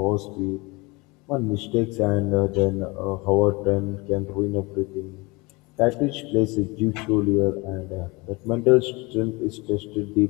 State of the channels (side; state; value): right; quieter; 25.7 dB